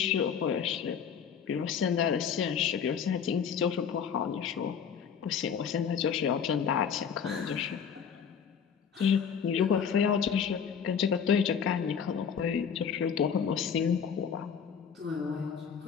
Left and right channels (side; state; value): right; quieter; 7.2 dB